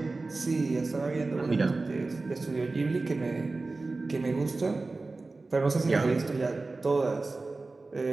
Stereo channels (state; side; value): quieter; left; 3.5 dB